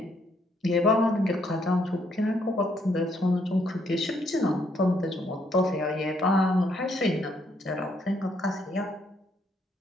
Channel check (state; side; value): normal; both; correlation 0.71